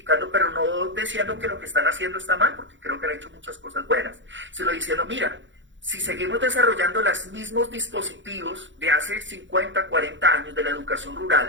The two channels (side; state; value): left; late; 0.54 ms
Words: pero no diciendo que lo que están haciendo está mal, porque creo que han hecho muchas cosas buenas, sino diciendo, mira, si seguimos desarrollando los mismos dispositivos de hace 50, 40 años de la educación